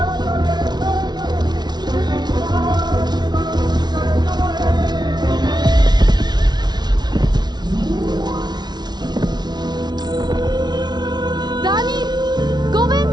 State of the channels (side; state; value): left; late; 0.20 ms